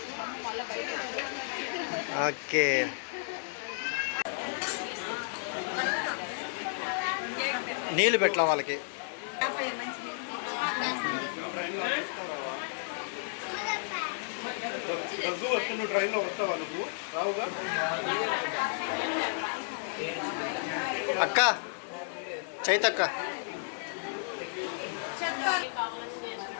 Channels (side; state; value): right; silent; 56 dB below the other